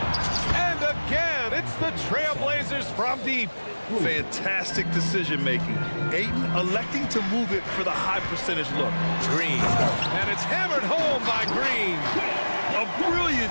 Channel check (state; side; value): inverted; both; correlation -1.00